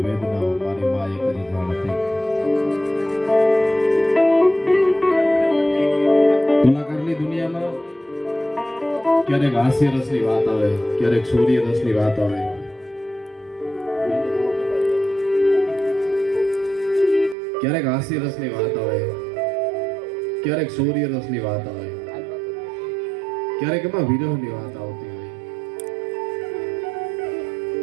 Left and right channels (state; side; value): drops out; left; at 17.4 s